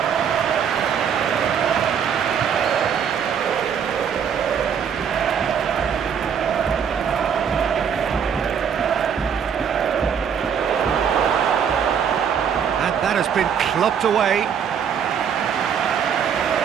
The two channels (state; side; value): quieter; left; 7.6 dB